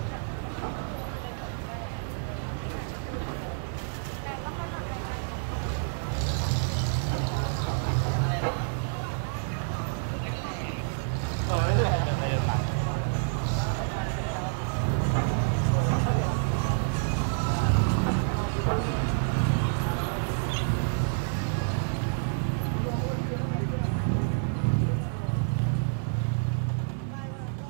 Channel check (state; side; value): silent; left; digital silence